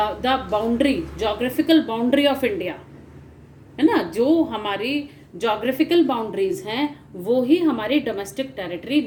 boundary, geographical boundary of India है ना, जो हमारी geographical boundaries हैं वो ही हमारी domestic territory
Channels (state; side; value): identical; both; correlation 1.00